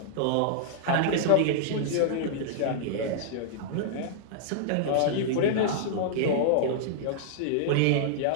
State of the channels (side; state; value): both; different; correlation -0.01